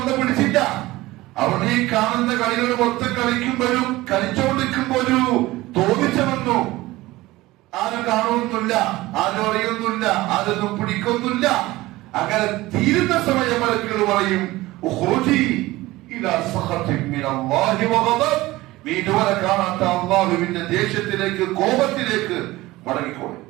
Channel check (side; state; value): left; quieter; 18.6 dB